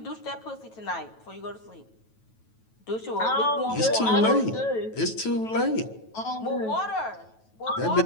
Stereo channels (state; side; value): late; right; 9.2 ms